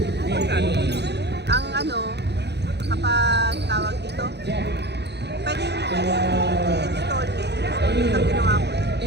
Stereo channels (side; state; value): left; late; 0.49 ms